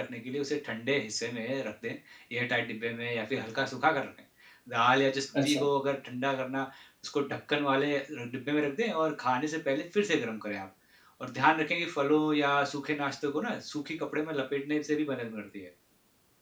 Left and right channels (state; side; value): identical; both; correlation 1.00